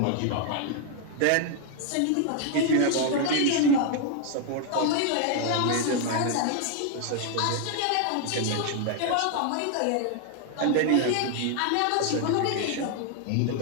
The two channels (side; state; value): both; different; correlation 0.00